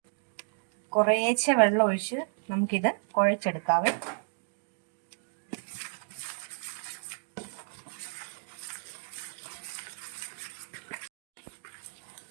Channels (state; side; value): silent; left; digital silence